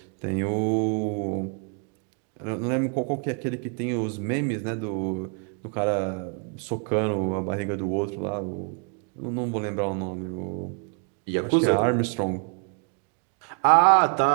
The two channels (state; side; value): quieter; left; 39.6 dB